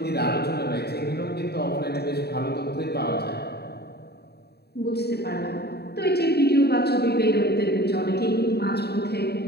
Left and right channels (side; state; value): right; late; 0.47 ms